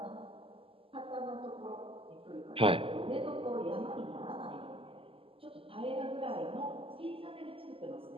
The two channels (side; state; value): left; late; 0.26 ms